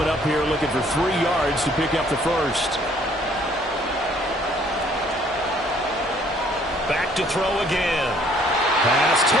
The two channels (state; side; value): normal; both; correlation 0.61